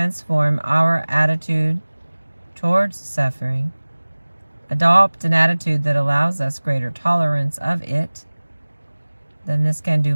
our attitude towards suffering, adopt an attitude that allows us greater tolerance of it, then this can do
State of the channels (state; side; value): inverted; both; correlation -1.00